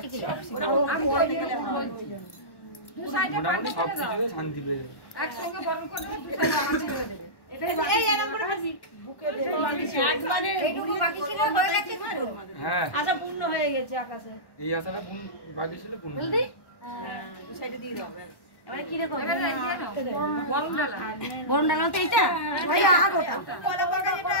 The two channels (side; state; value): right; late; 1.1 ms